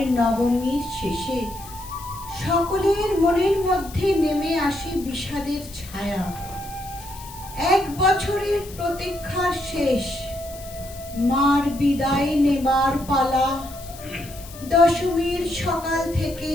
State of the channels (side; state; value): left; noise; hiss, 17 dB below the sound